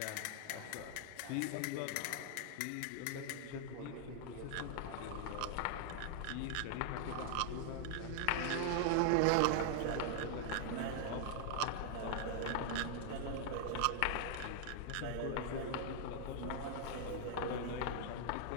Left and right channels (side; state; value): both; different; correlation 0.00